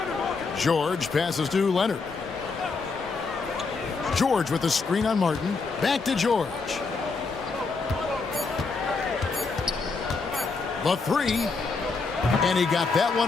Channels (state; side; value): quieter; right; 4.3 dB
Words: George passes to Leonard. George with a screen on Martin. Back to George. The three. And he got that one